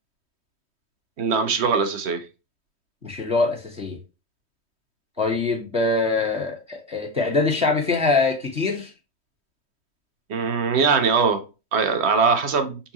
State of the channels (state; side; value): late; left; 3.1 ms